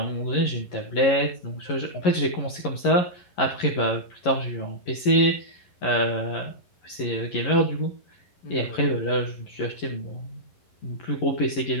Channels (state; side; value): late; right; 11 ms